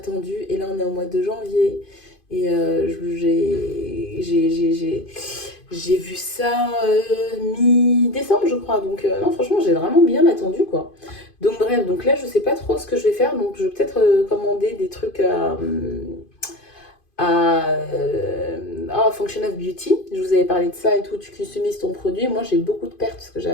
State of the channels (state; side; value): late; right; 2.5 ms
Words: et là, on est au mois de janvier. Et j'ai vu ça mi-décembre, je crois. Donc, non, franchement, j'ai vraiment bien attendu, quoi. Donc, bref, donc là, je sais pas trop ce que je vais faire. Donc, je vais peut-être commander des trucs à Function of Beauty. Je vous avais parlé de ça et tout. Tu customises ton produit. Moi, j'ai beaucoup de pertes parce que j'ai